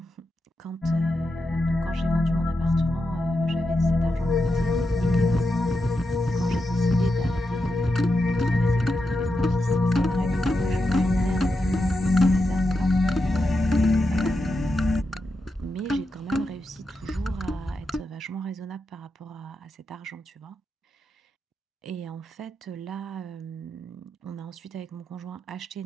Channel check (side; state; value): both; normal; correlation 0.87